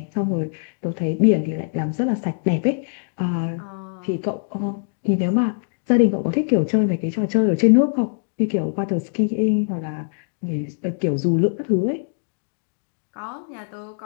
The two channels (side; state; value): right; silent; digital silence